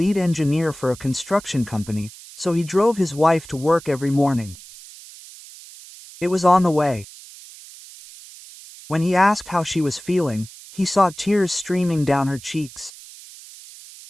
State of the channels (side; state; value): right; noise; hiss, 18 dB below the sound